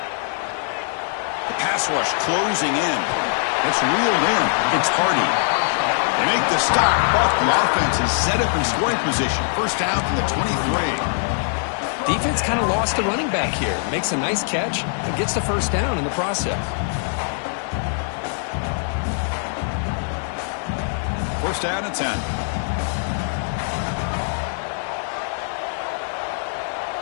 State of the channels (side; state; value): right; silent; digital silence